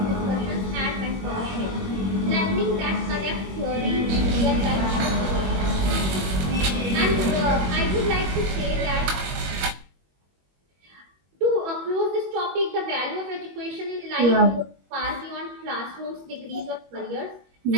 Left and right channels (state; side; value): late; left; 21 ms